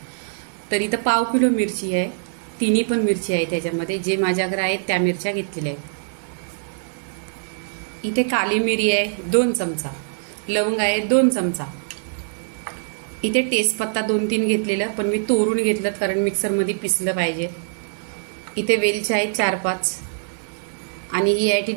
तर इथं पाव किलो मिरची आहे, तिन्ही पण मिरची आहे त्याच्यामध्ये, जे माझ्याकडे आहेत त्या मिरच्या घेतलेल्या आहेत। इथे काली मिरी आहे 2 चमचा, लवंग आहे 2 चमचा, इथे तेजपत्ता 2-3 घेतलेलं, पण मी तोडून घेतलं कारण मिक्सरमध्ये पिसलं पाहिजे। इथे वेलची आहे 4-5 आणि ही आहे ती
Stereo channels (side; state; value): left; silent; digital silence